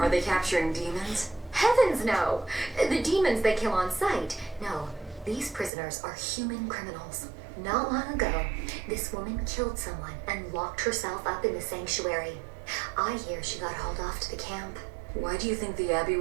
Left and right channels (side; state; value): left; drops out; at 5.7 s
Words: they capturing demons? Heavens no! The demons they kill on sight. No, these prisoners are human criminals. Not long ago, this woman killed someone and locked herself up in the sanctuary. I hear she got hauled off to the camp. Why do you think the Abbey